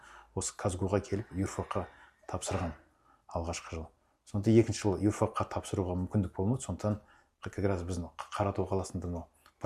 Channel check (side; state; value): both; identical; correlation 1.00